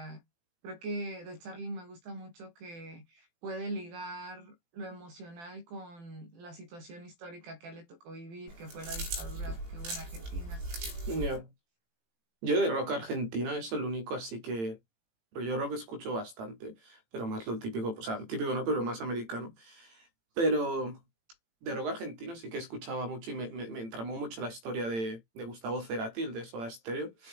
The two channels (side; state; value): left; late; 18 ms